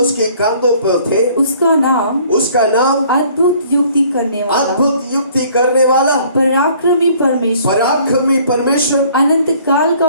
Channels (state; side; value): inverted; both; correlation -0.57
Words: उसके कांधों पर थे। उसका नाम अद्भुत युक्ति करने वाला, अद्भुत युक्ति करने वाला, पराक्रमी परमेश्वर, पराक्रमी परमेश्वर, अनंत काल का